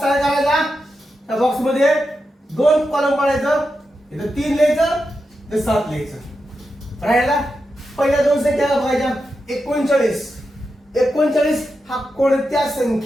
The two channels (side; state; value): both; normal; correlation 0.88